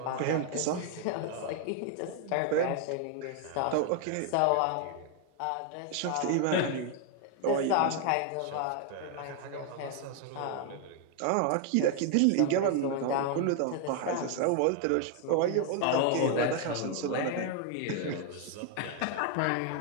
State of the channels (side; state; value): both; different; correlation 0.00